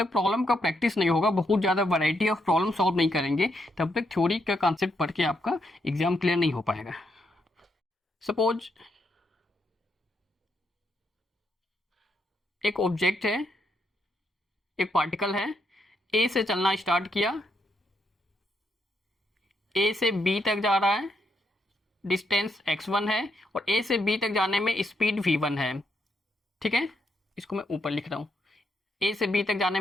प्रॉब्लम का प्रैक्टिस नहीं होगा, बहुत ज़्यादा वैरायटी ऑफ प्रॉब्लम सॉल्व नहीं करेंगे, तब तक थ्योरी का कॉन्सेप्ट पढ़ के आपका एग्जाम क्लियर नहीं हो पाएगा। सपोज एक ऑब्जेक्ट है, एक पार्टिकल है, ए से चलना स्टार्ट किया, ए से बी तक जा रहा है, डिस्टेंस x1 है और ए से बी तक जाने में स्पीड v1 है, ठीक है, इसको मैं ऊपर लिख रहा हूँ, ए से बी तक जाने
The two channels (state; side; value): normal; both; correlation 0.78